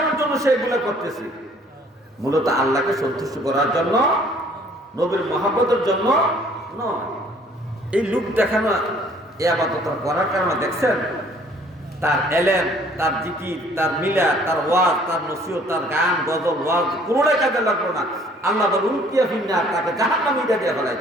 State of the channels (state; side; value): normal; both; correlation 0.58